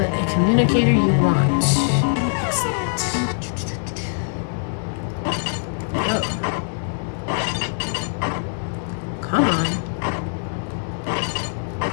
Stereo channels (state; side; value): silent; right; digital silence